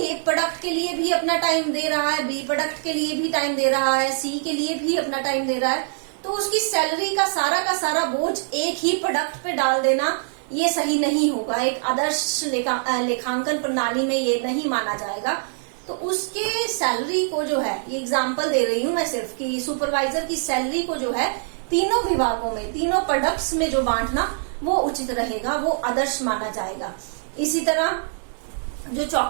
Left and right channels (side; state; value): left; silent; digital silence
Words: प्रोडक्ट के लिए भी अपना टाइम दे रहा है, बी प्रोडक्ट के लिए भी टाइम दे रहा है, सी के लिए भी अपना टाइम दे रहा है, तो उसकी सैलरी का सारा बोझ एक ही प्रोडक्ट पे डाल देना ये सही नहीं होगा। एक आदर्श लेखांकन प्रणाली में ये नहीं माना जाएगा। तो उसके सैलरी को जो है, ये एग्जांपल दे रही हूं मैं सिर्फ, कि सुपरवाइजर की सैलरी को जो है तीनों विभागों में, तीनों प्रोडक्ट्स में जो बांटना वो उचित रहेगा, वो आदर्श माना जाएगा। इसी तरह जो